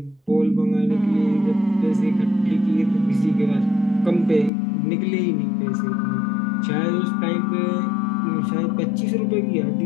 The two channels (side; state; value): right; drops out; at 4.5 s